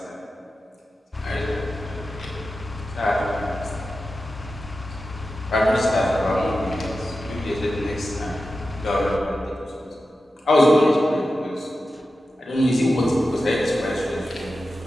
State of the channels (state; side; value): normal; both; correlation 0.92